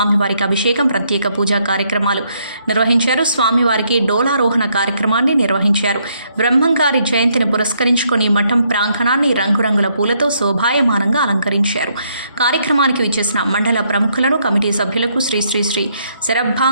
అభిషేకం, ప్రత్యేక పూజా కార్యక్రమాలు నిర్వహించారు. స్వామివారికి డోలారోహణ కార్యక్రమాన్ని నిర్వహించారు. బ్రహ్మంగారి జయంతిని పురస్కరించుకొని మఠం ప్రాంగణాన్ని రంగురంగుల పూలతో శోభాయమానంగా అలంకరించారు. కార్యక్రమానికి విచ్చేసిన మండల ప్రముఖులను, కమిటీ సభ్యులకు శ్రీ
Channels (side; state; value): both; inverted; correlation -0.73